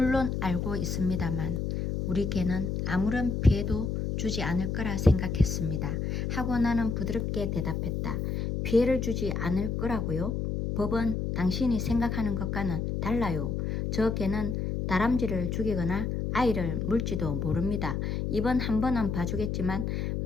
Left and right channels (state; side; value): noise; left; hum, 1 dB below the sound